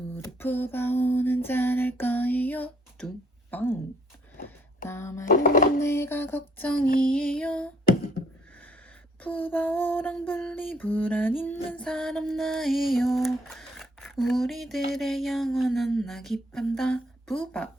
푸바오는 잘할 거예요. 뚱빵. 남아있는 내가 걱정이에요. 푸바오랑 분리불안 있는 사람 나예요. 우리들의 영원한 낙이 판다.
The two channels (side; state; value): both; normal; correlation 0.65